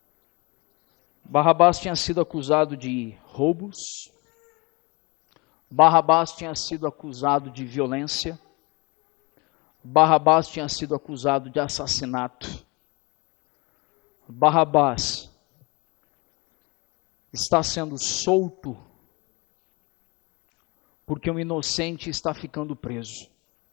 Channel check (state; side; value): quieter; right; 26.8 dB